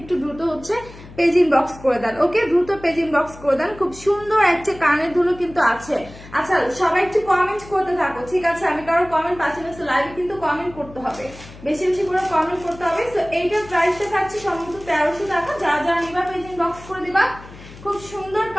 দ্রুত হচ্ছে পেজ ইনবক্স করে দেন, ওকে, দ্রুত পেজ ইনবক্স করে দেন। খুব সুন্দর একটা কানের দুলও কিন্তু আছে। আচ্ছা, সবাই একটু কমেন্ট করতে থাকো, ঠিক আছে। আমি কারো কমেন্ট পাচ্ছি না, লাইভে কিন্তু কমেন্ট করতে হবে, বেশি বেশি করে কমেন্ট করতে হবে। তো এইটার প্রাইসটা থাকছে সম্ভবত 1300 টাকা। যারা যারা নিবা পেজ ইনবক্স করে দিবা। খুব সুন্দর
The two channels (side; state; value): left; noise; hum, 18 dB below the sound